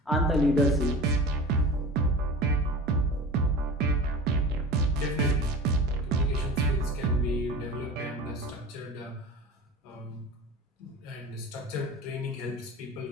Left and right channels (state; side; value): normal; both; correlation 0.35